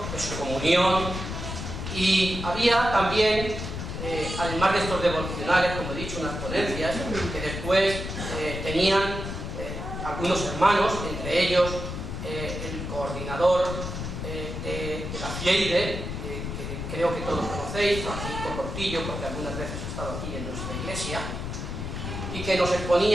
de su comunión, y había también, además de estos devocionales, como he dicho, unas ponencias que después tenían algunos hermanos, entre ellos el coordinador de la FIEIDE, que creo que todos conocéis, Francisco Cortillo, porque algunas veces ha estado aquí en nuestra iglesia, y que nos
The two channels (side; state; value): left; noise; rumble, 6 dB below the sound